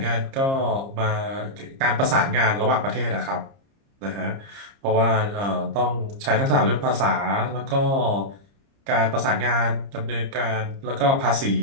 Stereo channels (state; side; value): late; left; 30 ms